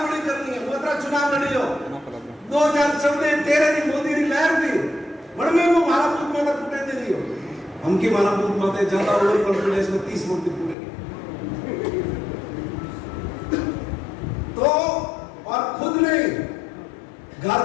करनी है, मोतरा चुनाव लड़ी हो 2014-13 की मोदी की लहर थी बड़ में वो मारा बूथ में टूटे दे रही हो हम की मारा बूथ माते ज्यादा ओवर कॉन्फिडेंस में 30 वोट टूटेगी तो और खुद नहीं घर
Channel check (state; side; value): drops out; right; at 10.8 s